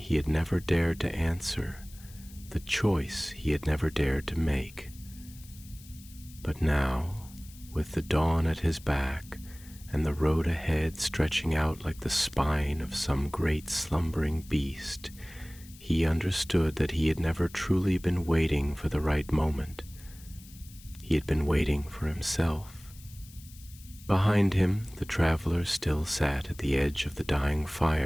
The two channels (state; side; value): noise; left; hiss, 21 dB below the sound